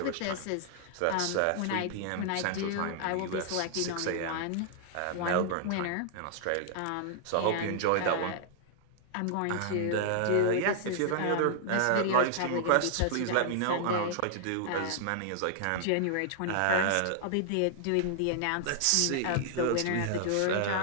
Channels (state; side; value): different; both; correlation -0.01